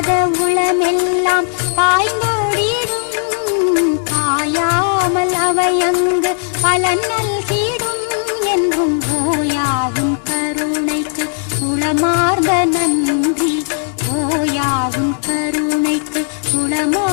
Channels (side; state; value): right; silent; 65 dB below the other